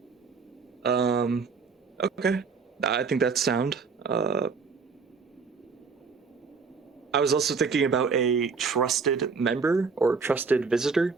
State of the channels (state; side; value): quieter; left; 5.1 dB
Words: Okay. I think that's sound. I was also thinking about a trusted member or trusted visitor